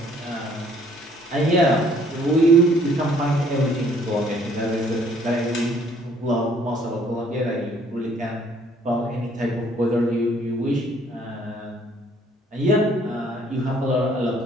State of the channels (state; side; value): normal; both; correlation 0.61